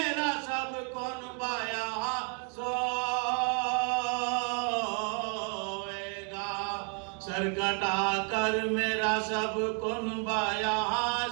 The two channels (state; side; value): quieter; left; 39.8 dB